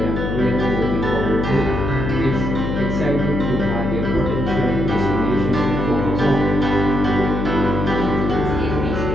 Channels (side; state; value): left; noise; hum, 2 dB below the sound